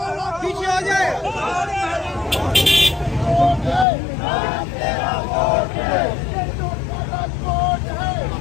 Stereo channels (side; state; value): right; drops out; at 3.9 s